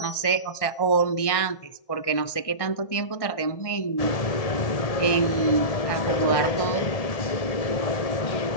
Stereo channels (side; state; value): right; late; 1.6 ms